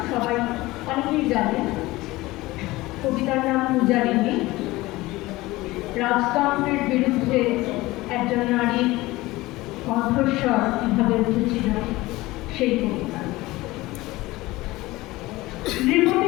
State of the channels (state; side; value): quieter; right; 19.4 dB